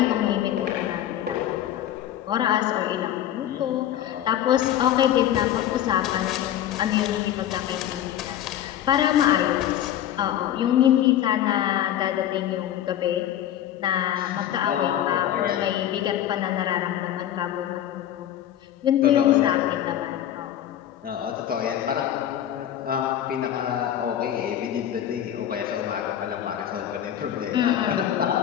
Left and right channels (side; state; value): right; quieter; 11.3 dB